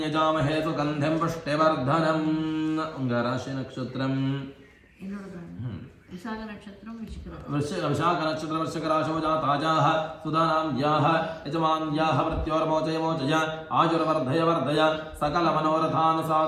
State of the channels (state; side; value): identical; both; correlation 1.00